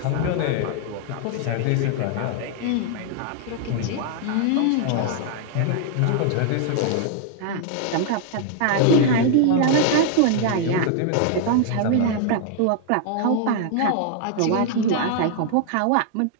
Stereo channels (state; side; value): different; both; correlation 0.00